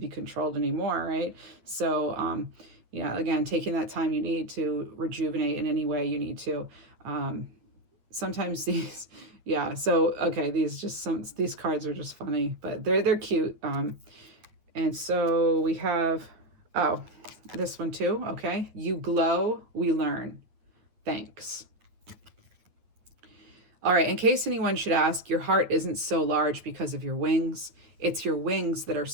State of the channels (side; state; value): left; late; 9.4 ms